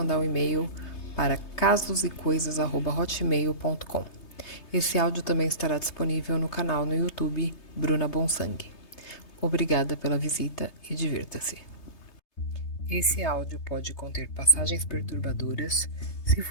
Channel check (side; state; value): right; late; 3.3 ms